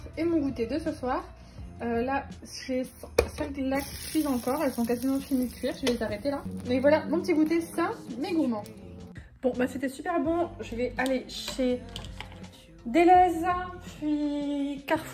et mon goûter de ce soir. Là, j'ai 5 là qui cuisent encore, elles sont quasiment finies de cuire, je vais les arrêter là. Mais voilà, mon petit goûter sain mais gourmand. Bon, bah c'était super bon, je vais aller chez Deleuze, puis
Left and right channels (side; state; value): both; identical; correlation 1.00